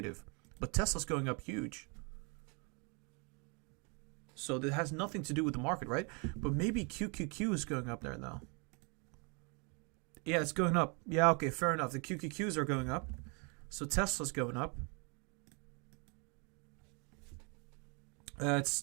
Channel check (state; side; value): quieter; left; 33.2 dB